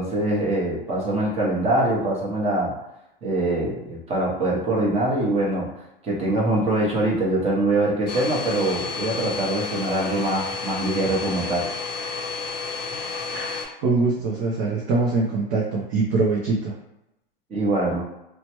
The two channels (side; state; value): both; normal; correlation 0.42